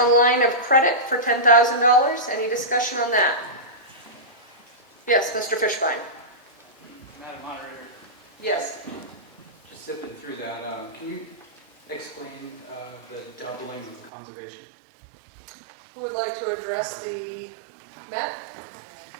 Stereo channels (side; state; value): left; drops out; at 14.1 s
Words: line of credit for $10,000. Any discussion on that? Yes, Mr. Fishbein. Madam Moderator, Yes. just zipping through that, can you explain the doubling of the conservation? Who would like to address the, Matt?